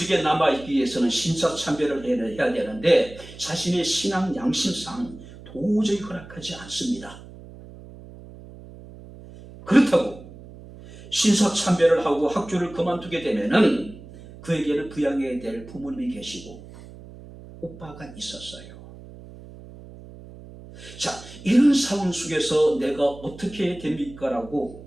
남아있기 위해서는 신사참배를 해야 되는데 자신의 신앙 양심상 도저히 허락하지 않습니다. 그렇다고 신사참배를 하고 학교를 그만두게 되면은 그에게는 부양해야 될 부모님이 계시고 오빠가 있었어요. 자, 이런 상황 속에서 내가 어떻게 해야 됩니까?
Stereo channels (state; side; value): noise; right; hum, 17 dB below the sound